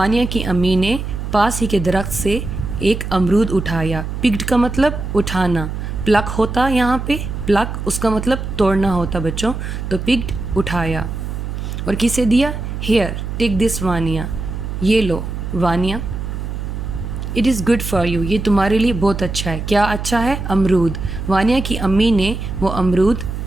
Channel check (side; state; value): right; noise; hum, 5 dB below the sound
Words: کی امی نے پاس ہی کے درخت سے ایک امرود اٹھایا. پکڈ کا مطلب اٹھانا. پلک ہوتا یہاں پہ، پلک اس کا مطلب توڑنا ہوتا بچوں. تو پکڈ اٹھایا اور کسے دیا؟ Here take this Vania. یہ لو Vania. It is good for you. یہ تمہارے لیے بہت اچھا ہے. کیا اچھا ہے؟ امرود. وانیہ کی امی نے وہ امرود